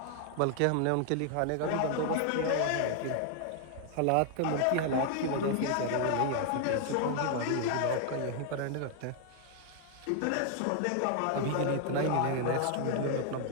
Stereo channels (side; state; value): both; different; correlation 0.00